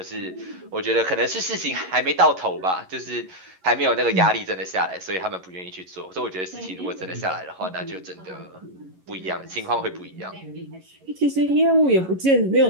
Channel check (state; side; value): late; left; 11 ms